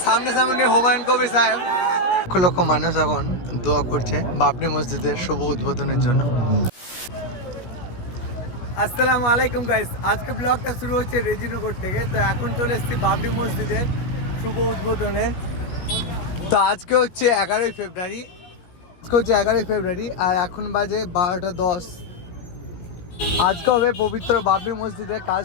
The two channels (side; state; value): right; late; 17 ms